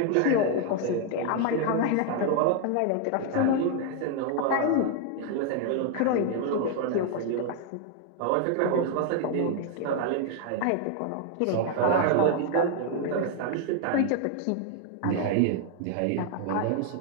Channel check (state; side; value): different; both; correlation 0.00